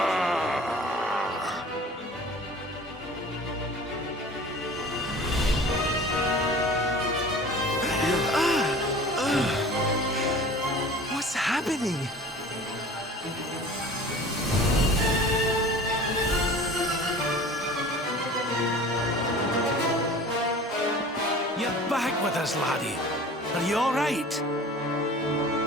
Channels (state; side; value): normal; both; correlation 0.43